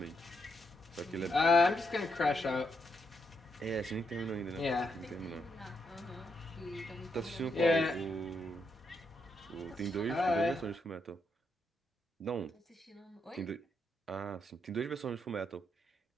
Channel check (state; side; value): normal; both; correlation 0.79